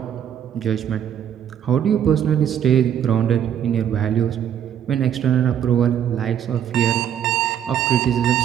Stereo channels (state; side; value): quieter; left; 9.5 dB